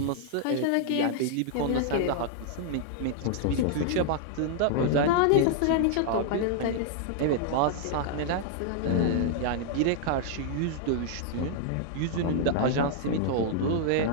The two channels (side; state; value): both; different; correlation -0.01